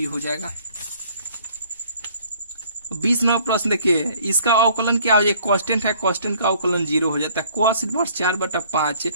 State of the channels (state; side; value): inverted; both; correlation -0.57